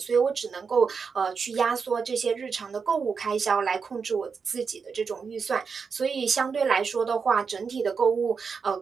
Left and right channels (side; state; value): left; quieter; 5.6 dB